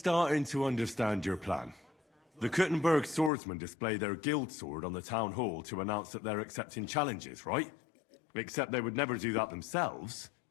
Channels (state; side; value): drops out; right; at 3.3 s